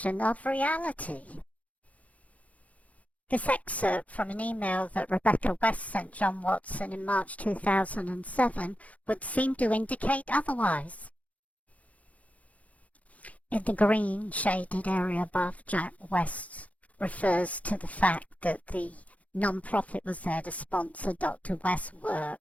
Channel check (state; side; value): late; right; 0.067 ms